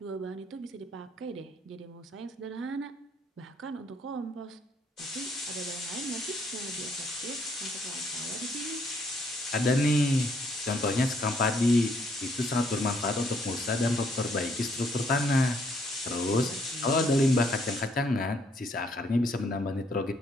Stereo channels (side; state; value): both; normal; correlation 0.69